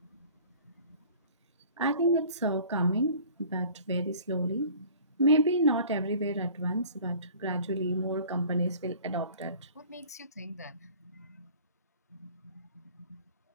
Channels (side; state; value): both; inverted; correlation -0.48